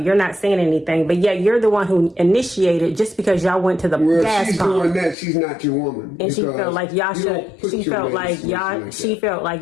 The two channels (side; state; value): right; drops out; at 5.2 s